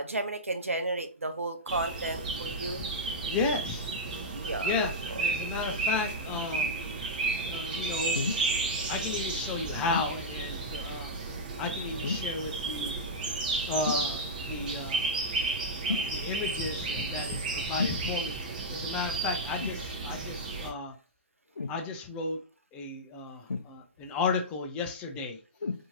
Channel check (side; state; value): both; normal; correlation -0.09